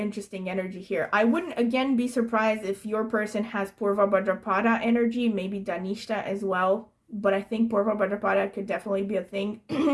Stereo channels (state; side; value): identical; both; correlation 1.00